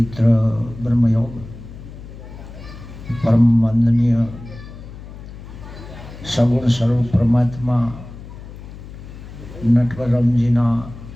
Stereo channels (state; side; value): noise; left; hum, 14 dB below the sound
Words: બ્રહ્મયોગ પરમ વંદનીય સગુણ સ્વરૂપ પરમાત્મા નટવરરામજીના